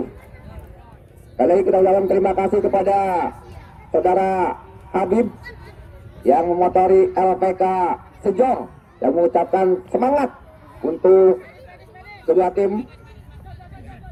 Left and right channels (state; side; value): identical; both; correlation 1.00